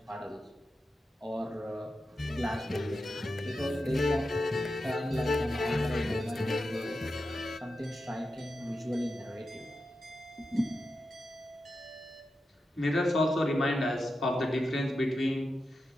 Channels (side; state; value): both; normal; correlation 0.90